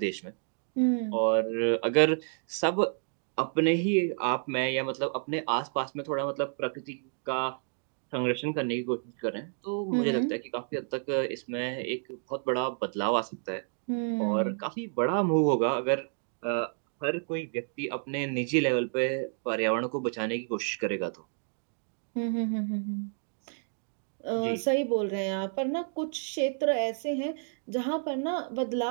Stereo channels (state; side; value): silent; left; 58 dB below the other